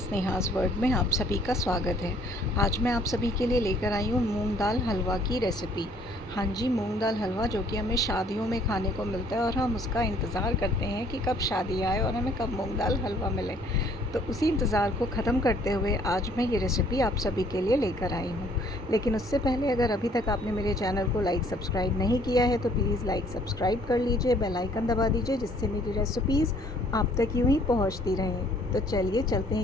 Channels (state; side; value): normal; both; correlation 0.60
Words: world में आप सभी का स्वागत है। आज मैं आप सभी के लिए लेकर आई हूँ मूंग दाल हलवा की रेसिपी। हाँ जी, मूंग दाल हलवा जो कि हमें शादियों में खाने को मिलता है और हम उसका इंतज़ार करते हैं कि कब शादी आए और हमें कब मूंग दाल हलवा मिले। तो उसी इंतज़ार को ख़त्म करते हुए आज मैं ये रेसिपी आप सभी के लिए लेकर आई हूँ। लेकिन उससे पहले अगर अभी तक आपने मेरे चैनल को लाइक सब्सक्राइब नहीं किया है तो प्लीज़ लाइक सब्सक्राइब कर लीजिए, बेल आइकन दबा दीजिए, जिससे मेरी रेसिपीज़ आप तक यूँ ही पहुँचती रहें। तो चलिए चलते